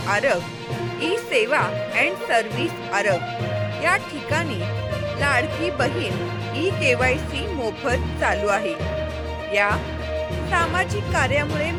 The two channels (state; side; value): identical; both; correlation 1.00